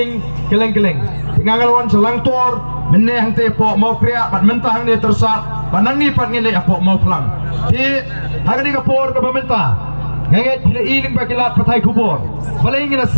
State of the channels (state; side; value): inverted; both; correlation -1.00